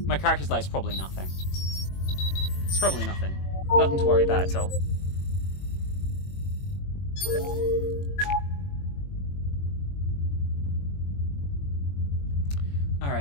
My character's light's probably nothing. It's probably nothing. Nothing to worry about at all.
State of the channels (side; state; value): right; late; 21 ms